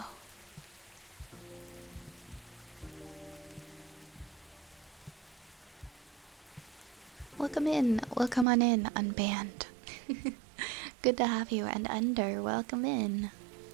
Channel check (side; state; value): left; drops out; at 8.5 s